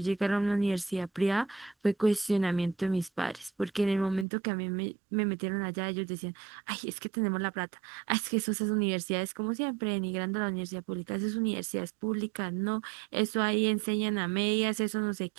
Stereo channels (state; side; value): drops out; left; at 4.2 s